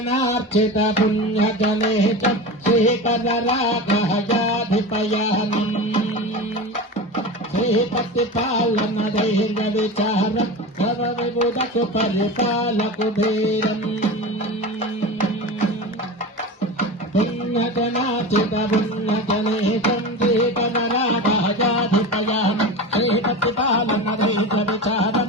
पुण्यजने च श्रीकरराघयाधिपयानम् श्रीपतिपालन धैर्यविचारम् सर्वविबुधकु परिपालकुबेरम् पुण्यजनार्चित पुण्यजने च श्रीकरराघयाधिपयानम् श्रीपतिपालन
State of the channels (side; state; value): both; normal; correlation 0.27